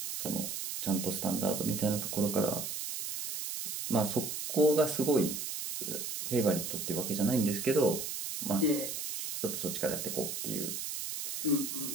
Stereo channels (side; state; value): right; noise; hiss, 4 dB below the sound